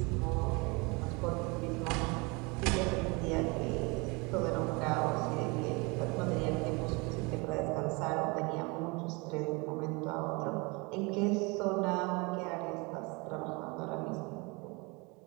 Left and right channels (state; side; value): quieter; left; 27.9 dB